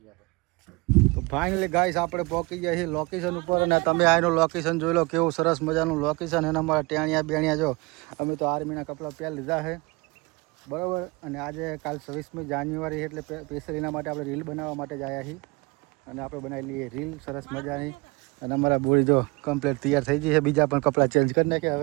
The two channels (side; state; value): left; quieter; 26.1 dB